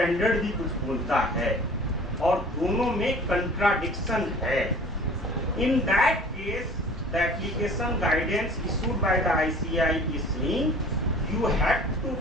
भी कुछ बोलता है और दोनों में कंट्राडिक्शन है. इन that case the application guidance issued by the ICI is saying you have to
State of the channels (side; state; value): both; normal; correlation 0.46